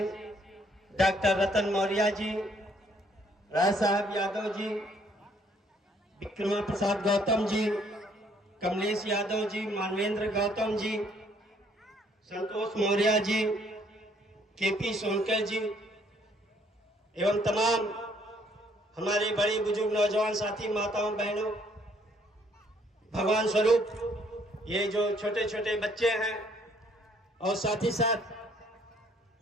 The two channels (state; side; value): normal; both; correlation 0.65